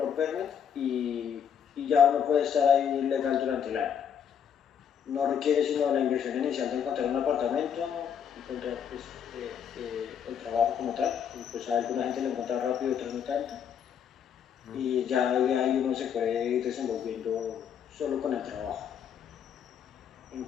permit y ya uno puede estar ahí legal durante el año. No requiere sino la inversión inicial de encontrar un apartamento, encontrar pues, el trabajo como tal. Y pues a alguna gente lo encuentra rápido, otros no tanto. Y ya de ahí uno se puede ir desenvolviendo solo con el trabajo. En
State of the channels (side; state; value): right; quieter; 8.1 dB